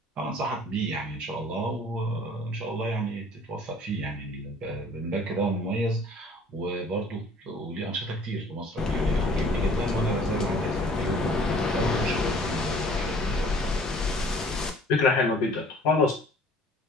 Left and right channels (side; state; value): both; normal; correlation 0.52